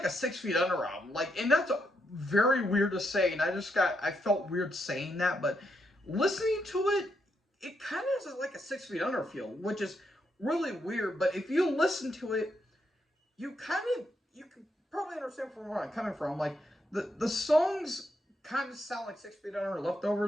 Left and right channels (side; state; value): both; normal; correlation 0.79